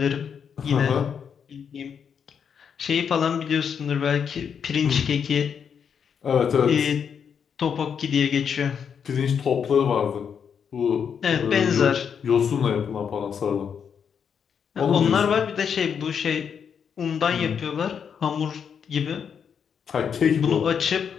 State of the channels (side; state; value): right; quieter; 7.2 dB